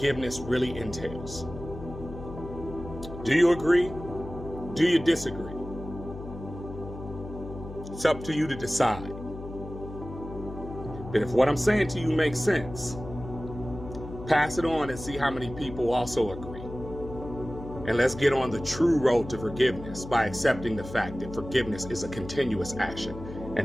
really entails. Do you agree? Do you disagree? It's up to you to decide. But if what I'm saying to you makes sense, pass it on and see how many people also agree. And let's get on the true road to forgiveness by accepting the fact that forgiveness is a continuous action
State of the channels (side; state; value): left; noise; hum, 12 dB below the sound